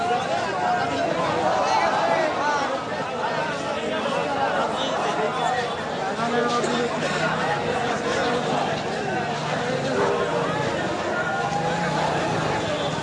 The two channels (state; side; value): identical; both; correlation 1.00